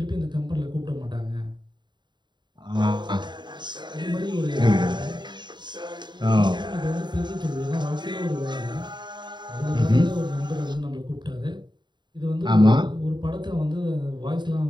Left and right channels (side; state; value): left; late; 0.22 ms